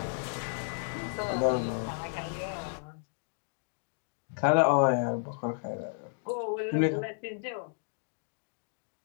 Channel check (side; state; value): right; silent; digital silence